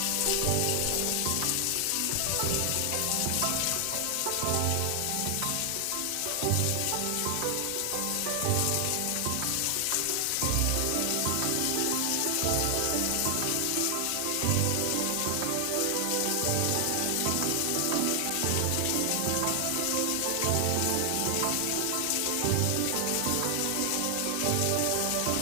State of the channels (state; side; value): different; both; correlation 0.00